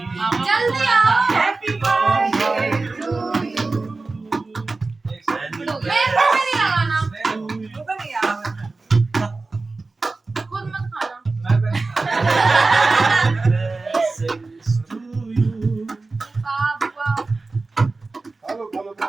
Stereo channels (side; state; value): left; quieter; 3.6 dB